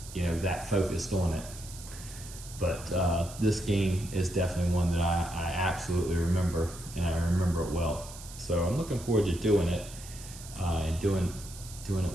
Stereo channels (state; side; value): noise; right; hiss, 15 dB below the sound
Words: that focused on it. But this game is definitely one that I absolutely remember, and I remember it well. So I'm looking forward to doing it and doing